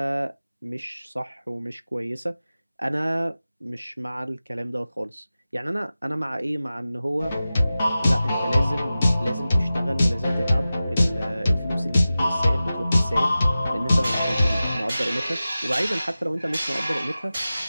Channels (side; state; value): both; inverted; correlation -0.95